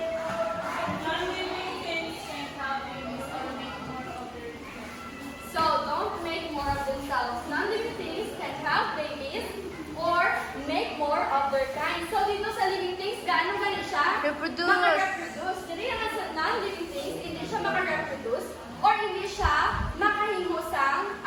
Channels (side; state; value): both; identical; correlation 1.00